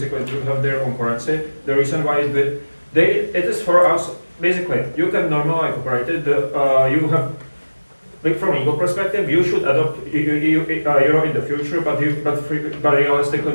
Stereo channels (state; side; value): inverted; both; correlation -1.00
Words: do have their own currency. The reason why it is for us. Basically, you can normally operate it. You have, like from legal perspective, you should adopt euro in the future, but realistically